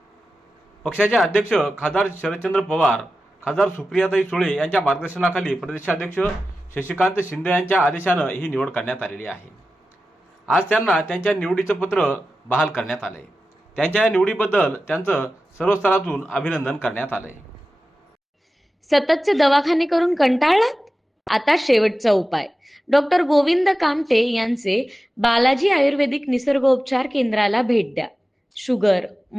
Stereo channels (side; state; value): both; normal; correlation 0.94